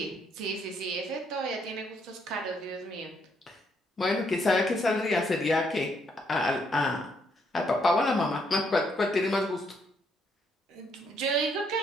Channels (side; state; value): both; normal; correlation 0.72